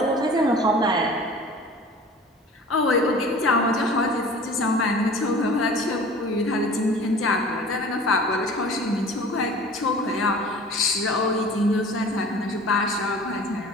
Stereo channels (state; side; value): normal; both; correlation 0.43